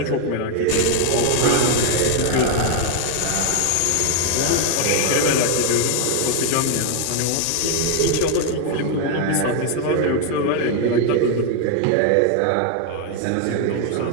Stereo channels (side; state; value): both; different; correlation 0.00